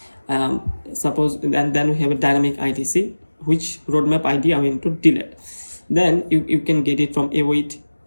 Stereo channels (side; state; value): both; inverted; correlation -1.00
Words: suppose, and then we have a dynamic IDC, which roadmap ID I want to delete. Then you can get it from await